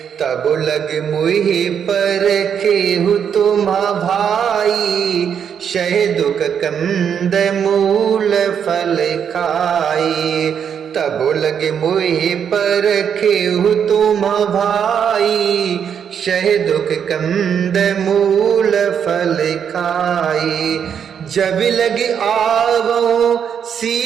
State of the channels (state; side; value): quieter; left; 7.9 dB